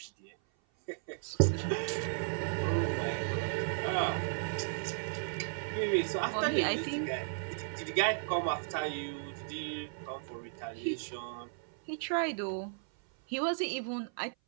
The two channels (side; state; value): left; silent; 55 dB below the other